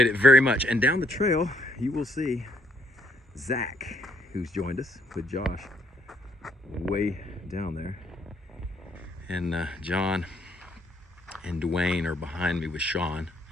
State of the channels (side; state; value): both; normal; correlation 0.70